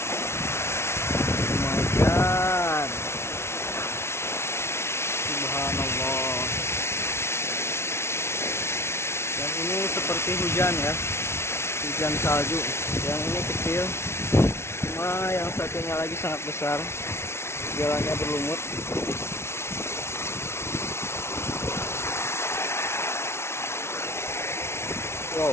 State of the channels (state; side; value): late; right; 0.12 ms